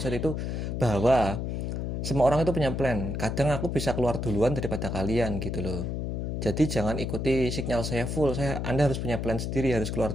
itu bahwa semua orang itu punya plan. Kadang aku bisa keluar duluan daripada kalian gitu loh. Jadi jangan ikuti signal saya full. Anda harus punya plan sendiri, harus keluar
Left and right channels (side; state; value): left; noise; hum, 2 dB below the sound